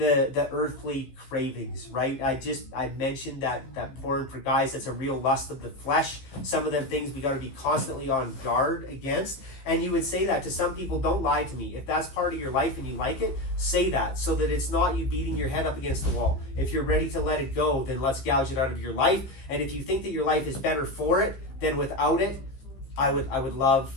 earthly cravings, right? I mentioned that porn for guys, that's a real lust of the flesh. Some of them things we got to be constantly on guard against. And you would say that to some people. Don't lie to me. If that's part of your life and you like it, say that, so that it's not you beating your head up against the wall. If you're ready to let it go, then let's gouge it out of your life. And if you think that your life is better for it than without it, I would love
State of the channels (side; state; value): right; late; 15 ms